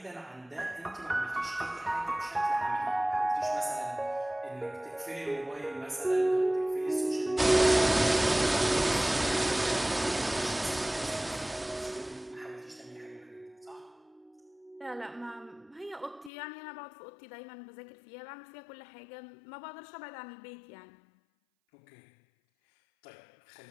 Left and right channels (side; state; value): right; drops out; at 16.3 s